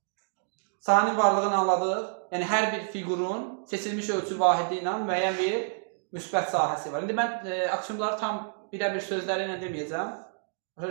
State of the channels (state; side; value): silent; left; digital silence